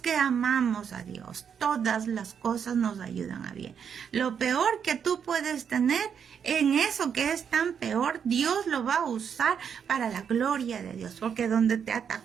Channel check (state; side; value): quieter; left; 7.5 dB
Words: amamos a Dios, todas las cosas nos ayudan a bien. Lo peor que tú puedes tener, en eso que es tan peor, Dios lo va a usar para la gloria de Dios. Porque donde te